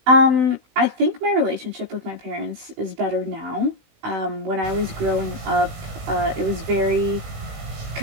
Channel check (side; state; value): left; late; 18 ms